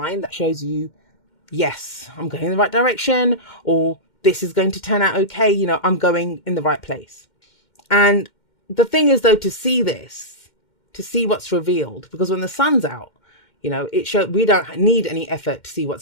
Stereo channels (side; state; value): right; late; 2.1 ms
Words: that shows you, yes, I'm going in the right direction, or this is going to turn out okay. You know, I'm going in the right place. And the thing is, though, to see this, to see what's revealed, because when the sun's out, you know, we don't need any effort to see